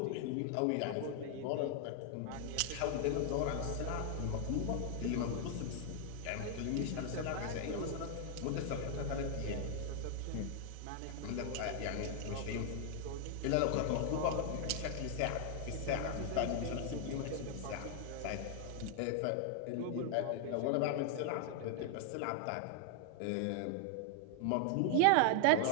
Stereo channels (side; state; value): both; different; correlation 0.00